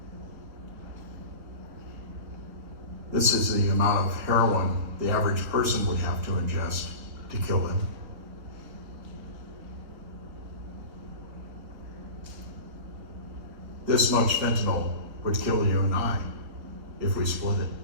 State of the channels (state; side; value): late; left; 3.6 ms